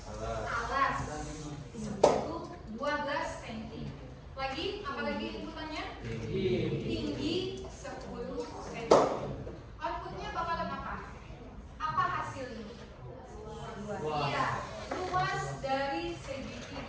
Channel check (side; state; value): both; identical; correlation 1.00